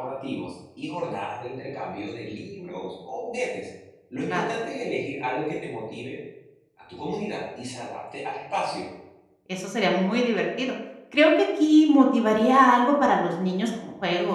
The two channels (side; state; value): both; identical; correlation 1.00